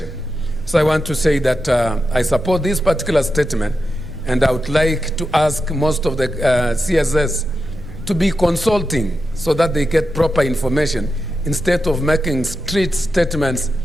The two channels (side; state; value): right; noise; rumble, 14 dB below the sound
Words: So I want to say that I support this particular statement, and I would like to ask most of the CSS to be consulting so that they get proper information instead of making street statements